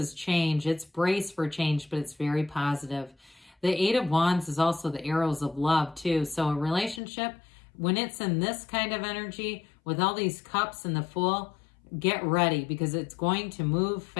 change. It's brace for change, but it's very positive. The Eight of Wands is also the arrows of love too. So a relationship, when it's in this kind of energy with all these cups and the Fool, get ready because it's going to move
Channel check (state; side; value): drops out; right; at 7.0 s